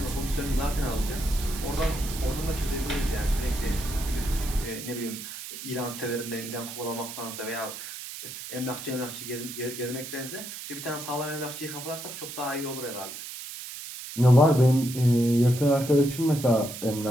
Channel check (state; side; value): noise; right; hiss, 10 dB below the sound